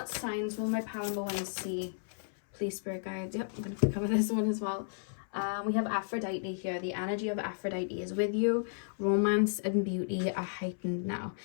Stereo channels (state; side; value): silent; right; 56 dB below the other